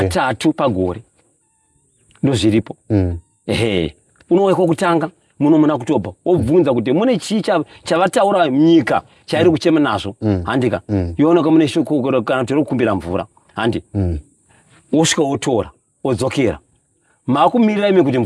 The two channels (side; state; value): both; identical; correlation 1.00